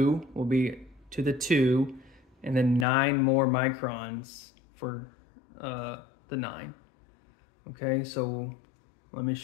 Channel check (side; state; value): right; drops out; at 2.9 s